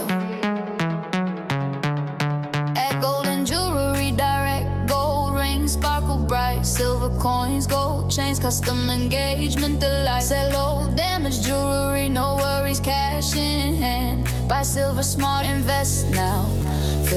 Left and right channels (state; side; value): identical; both; correlation 1.00